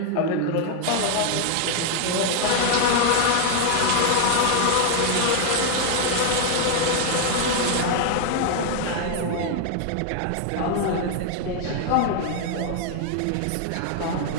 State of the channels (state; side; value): different; both; correlation 0.00